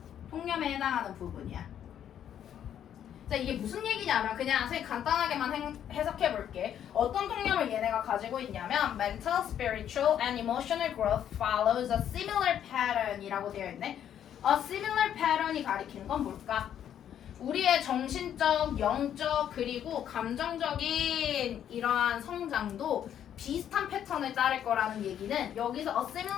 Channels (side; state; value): right; quieter; 9.8 dB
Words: 통념에 해당하는 부분이야. 자, 이게 무슨 얘기냐면 그냥 선생님 간단하게만 해석해 볼게. 어떤 통념을 얘네가 가지고 있냐면 mental, spiritual, and emotional growth follows a similar pattern이라고 되어 있네. A similar pattern이 가리키는 건 뭘까? 우리의 정신적, 영적, 그리고 감정적인 이러한 성장도 비슷한 패턴을 따를 거라는 얘기는 여기서 a